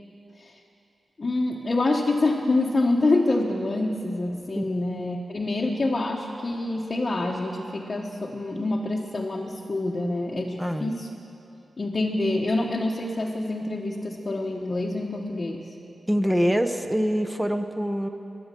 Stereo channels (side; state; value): both; normal; correlation 0.94